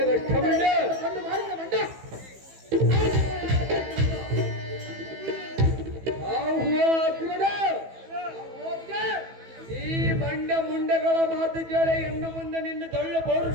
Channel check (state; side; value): late; left; 15 ms